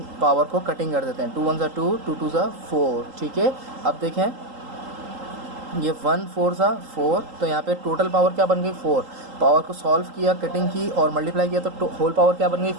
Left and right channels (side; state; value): left; late; 3.8 ms